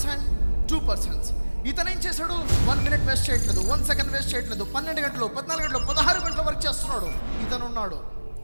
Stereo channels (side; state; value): both; inverted; correlation -1.00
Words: 2 persons. ఇతను ఏం చేశాడు, 1 minute వేస్ట్ చేయట్లేదు, 1 second వేస్ట్ చేయట్లేదు, 12 గంటలు, 14 గంటలు, 16 గంటలు వర్క్ చేస్తున్నాడు. ఇతను ఉన్నాడు